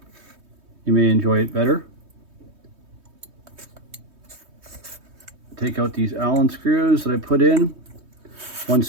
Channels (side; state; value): left; late; 3.2 ms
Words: you may enjoy it better. Take out these Allen screws that I put in,